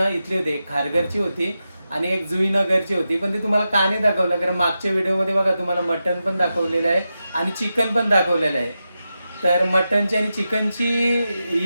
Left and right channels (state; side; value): inverted; both; correlation -0.90